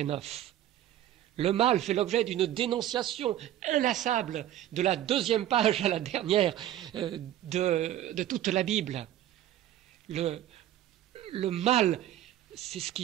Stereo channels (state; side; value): quieter; left; 12.3 dB